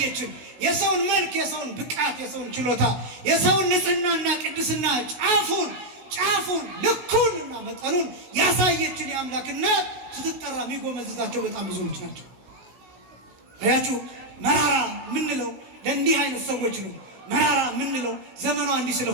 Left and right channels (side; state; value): left; late; 16 ms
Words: የሰውን መልክ፣ የሰውን ብቃት፣ የሰውን ችሎታ፣ የሰውን ንጽህናና ቅድስና ጫፉን ልኩንና መጠኑን ያሳየችን የአምላክ እናት ስትጠራ የሚጎመዝዛቸው በጣም ብዙዎች ናቸው። አያችሁ፣ መራራ የምንለው ለእንዲህ አይነት ሰዎች ነው። መራራ የምንለው ዘመኗ እንዲህ